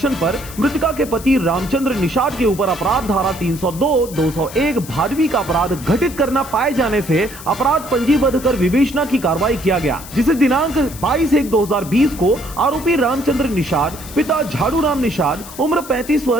पर मृतिका के पति रामचंद्र निषाद के ऊपर अपराध धारा 302, 201 भादवी का अपराध घटित करना पाए जाने से अपराध पंजीबद्ध कर विवेचना की कार्रवाई किया गया, जिसे दिनांक 22/1/2020 को आरोपी रामचंद्र निषाद पिता झाड़ू राम निषाद उम्र 35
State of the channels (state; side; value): noise; left; hiss, 15 dB below the sound